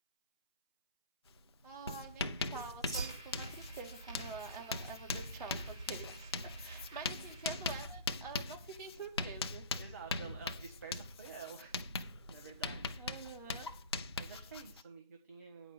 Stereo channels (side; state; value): both; inverted; correlation -0.36